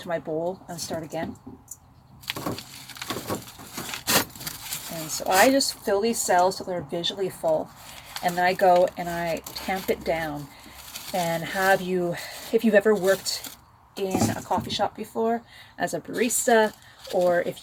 my bowl and start again. And so I just fill these cells till they're visually full, and then I go and I tamp it down. And if you've ever worked in a coffee shop before as a barista, or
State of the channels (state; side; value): identical; both; correlation 1.00